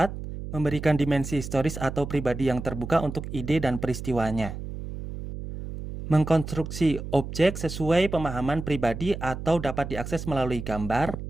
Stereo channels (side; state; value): right; noise; hum, 8 dB below the sound